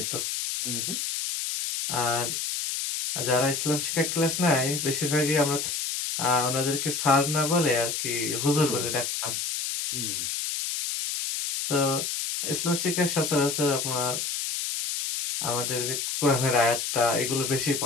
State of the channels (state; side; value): noise; left; hiss, 2 dB below the sound